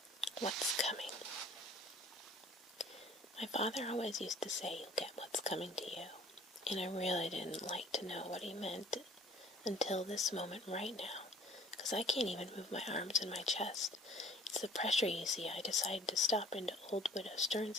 What's coming? My father always used to say, you'll get what's coming to you. And I really didn't like to know what he meant until this moment right now, because I can't even move my arms and my chest. It's the pressure, you see. I decided to stop into old Widow Stern's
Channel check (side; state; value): both; normal; correlation 0.52